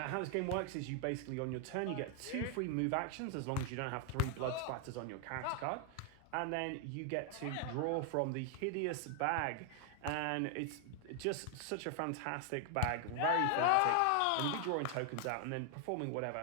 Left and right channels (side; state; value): both; different; correlation 0.00